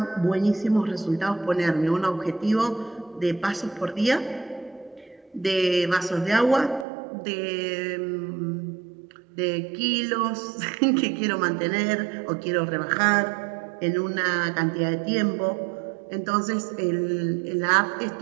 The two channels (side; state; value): left; drops out; at 6.9 s